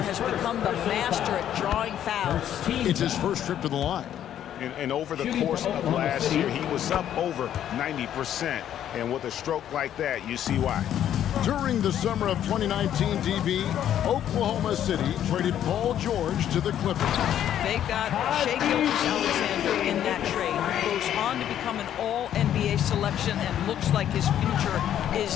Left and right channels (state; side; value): quieter; right; 10.6 dB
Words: has become the master at drawing fouls. It's his first trip to the line. And over the course of last year, he was up over 90%. And with a stroke like that, you see why. During the summer of 2019, DB, Oklahoma City traded Paul George to the Clippers. They got Shai Gilgeous-Alexander in that trade. Goes on to become an all-NBA selection and looks like his future